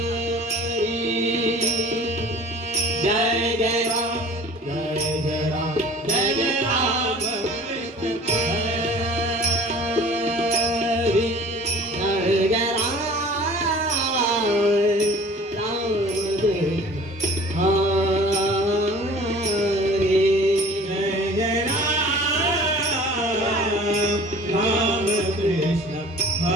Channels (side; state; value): both; normal; correlation 0.46